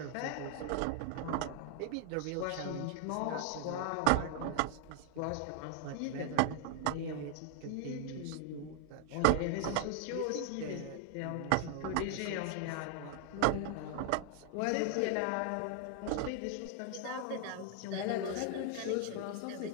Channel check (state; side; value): different; both; correlation 0.00